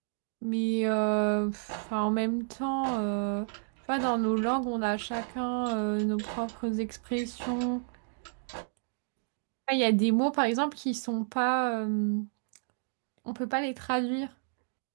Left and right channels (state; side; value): silent; left; digital silence